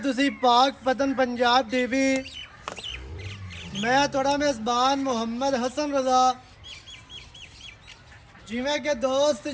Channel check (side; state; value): both; identical; correlation 1.00